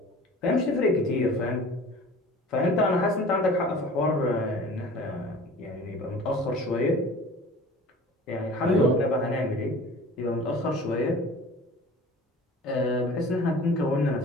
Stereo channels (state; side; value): normal; both; correlation 0.43